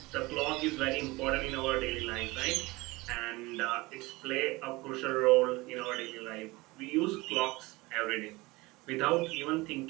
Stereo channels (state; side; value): quieter; left; 22.1 dB